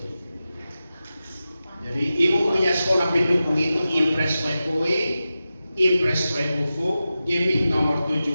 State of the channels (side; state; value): both; inverted; correlation -0.93